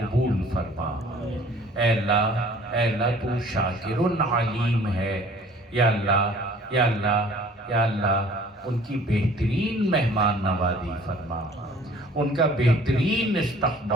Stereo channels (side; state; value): both; normal; correlation 0.51